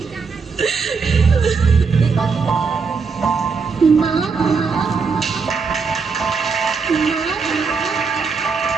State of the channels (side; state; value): left; quieter; 5.1 dB